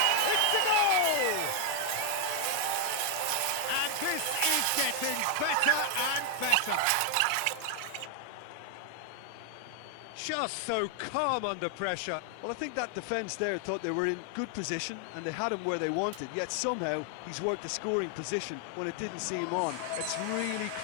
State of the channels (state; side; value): different; both; correlation 0.00